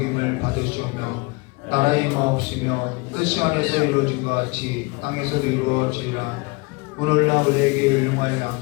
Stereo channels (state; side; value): quieter; right; 27.3 dB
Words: 받으시오며, 나라의 마옵시며 뜻이 하늘에서 이루어진 것 같이 땅에서도 이루어지리라. 오늘날 우리에게 일용할